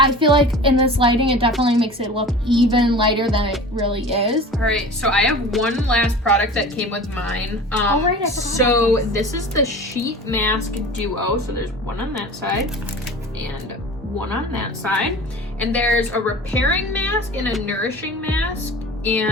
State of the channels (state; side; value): normal; both; correlation 0.38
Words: feel like in this lighting, it definitely makes it look even lighter than it really is. All right, so I have one last product that came with mine. Oh, right, I forgot. So this is the Sheet Mask Duo. So there's one on that side and one on that side. And there's a repairing mask and a nourishing mask.